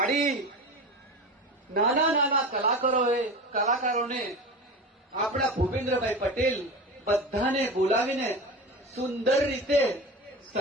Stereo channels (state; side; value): normal; both; correlation 0.28